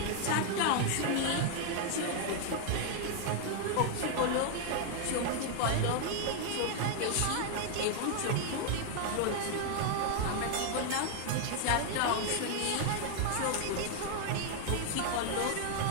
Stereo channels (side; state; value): both; different; correlation 0.00